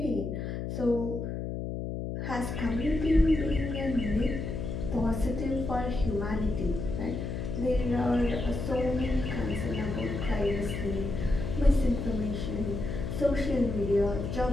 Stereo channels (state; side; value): noise; left; hum, 4 dB below the sound